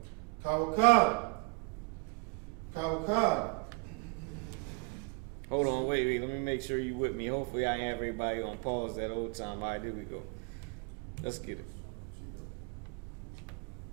Kawakab. Hold on, wait. Let me make sure you with me. Hopefully I have everybody on pause that whole time. All right, here we go. Let's get it.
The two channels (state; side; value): quieter; left; 31.2 dB